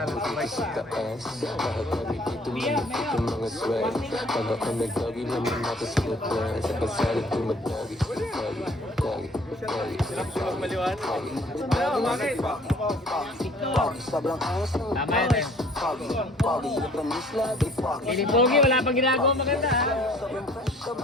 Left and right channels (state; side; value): normal; both; correlation 0.55